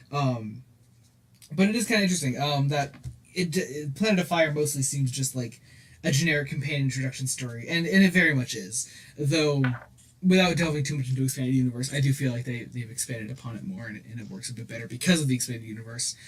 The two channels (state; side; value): identical; both; correlation 1.00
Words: But it is kind of interesting. That Planet of Fire mostly seems just like a generic companion introduction story, and it very much is. Though, without delving too much into expanded universe, I do feel like they've expanded upon it more, and it works a bit better because of the expanded universe.